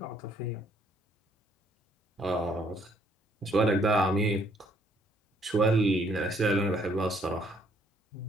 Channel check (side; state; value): both; normal; correlation 0.66